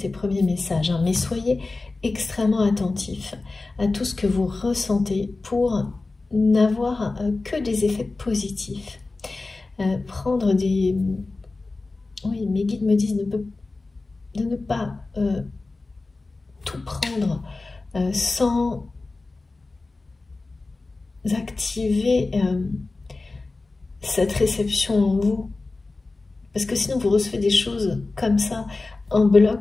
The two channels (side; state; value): right; quieter; 3.5 dB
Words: ces premiers messages, hein, mais soyez extrêmement attentifs à tout ce que vous ressentez pour n'avoir que des effets positifs. Prendre des... Oui, mes guides me disent de ne pas tout prendre sans activer cette réception en vous. Parce que sinon, vous recevez des choses comme ça, en